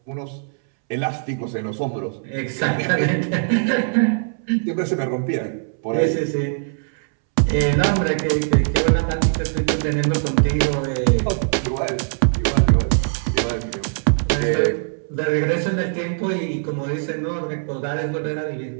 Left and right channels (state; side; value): silent; left; 65 dB below the other